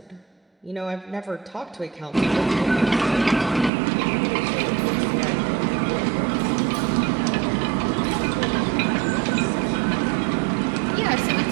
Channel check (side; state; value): left; drops out; at 3.7 s